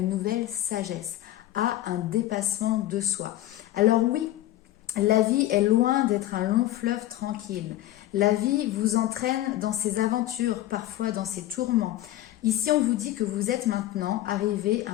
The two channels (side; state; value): right; quieter; 14.7 dB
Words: nouvelle sagesse, à un dépassement de soi. Alors oui, la vie est loin d'être un long fleuve tranquille. La vie vous entraîne dans ses aventures, parfois dans ses tourments. Ici, on vous dit que vous êtes maintenant arrivé à